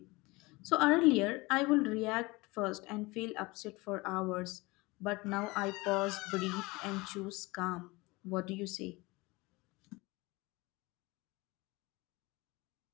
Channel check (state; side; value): quieter; right; 23.3 dB